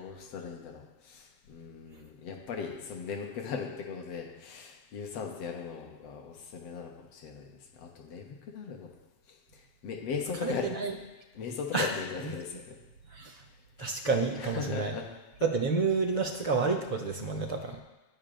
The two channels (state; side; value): late; right; 6.9 ms